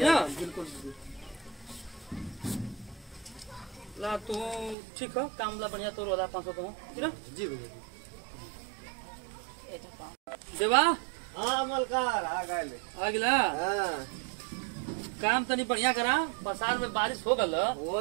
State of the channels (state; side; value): drops out; left; at 4.8 s